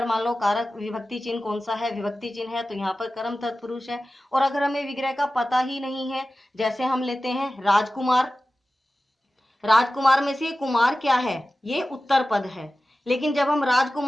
मान लो कारक विभक्ति चिन्ह कौन सा है, विभक्ति चिन्ह है, तो यहाँ पर कर्म तत्पुरुष है। और अगर हमें विग्रह का पता ही नहीं है, जैसे हम लेते हैं राजकुमार, राजकुमार में से कुमार क्या है, ये उत्तर पद है, लेकिन जब हम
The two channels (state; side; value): normal; both; correlation 0.95